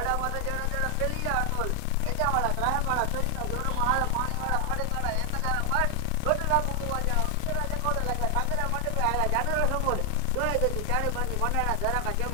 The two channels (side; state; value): both; different; correlation 0.00